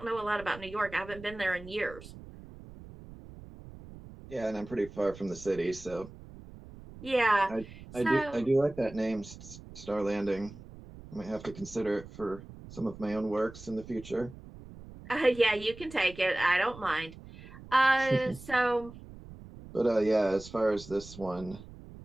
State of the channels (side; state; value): right; noise; rumble, 16 dB below the sound